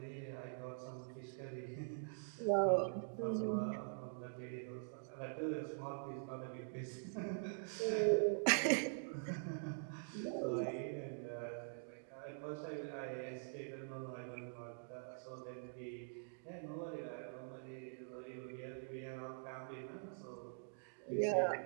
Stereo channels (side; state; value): left; silent; digital silence